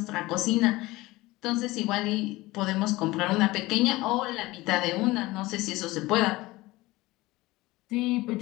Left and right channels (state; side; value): quieter; right; 19.8 dB